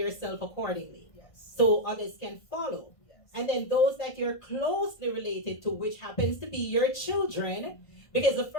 accordingly so others can follow. And then those that you're closely related to, which happens to be your children, because the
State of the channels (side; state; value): right; late; 1.5 ms